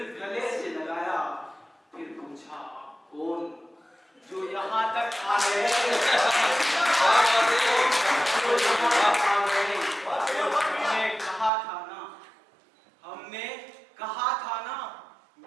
गले से लगाया। फिर पूछा आप कौन जो यहाँ तक आ गए। हमने कहा था ना, हमने कहा था ना,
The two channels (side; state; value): left; drops out; at 11.5 s